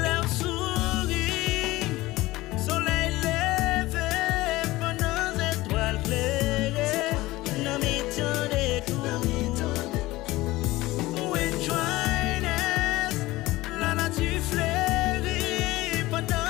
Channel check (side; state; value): right; quieter; 18.8 dB